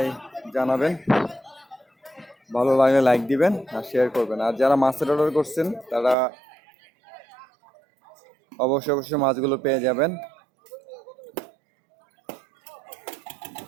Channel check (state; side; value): drops out; left; at 6.2 s